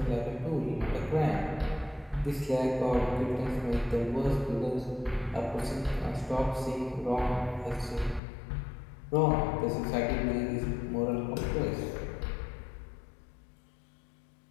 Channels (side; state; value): right; drops out; at 8.2 s